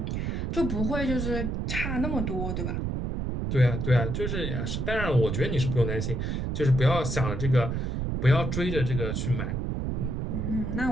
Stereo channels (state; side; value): noise; right; rumble, 1 dB below the sound